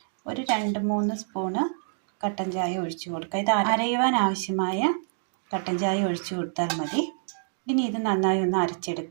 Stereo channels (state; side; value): silent; left; digital silence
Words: ഒരു 2-3 സ്പൂണ് കട്ടൻ ചായ ഒഴിച്ചു കൊടുക്കുക. ഇത് അരയുവാൻ ആവശ്യമായ കട്ടൻ ചായ ഒഴിച്ചു കൊടുത്താൽ മതി. ഇനി ഇത് നന്നായി ഒന്ന്